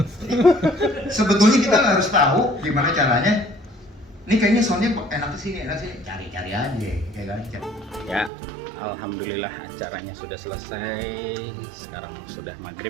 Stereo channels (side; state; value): left; drops out; at 8.3 s